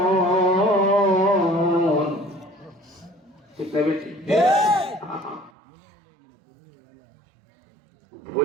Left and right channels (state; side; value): drops out; left; at 5.5 s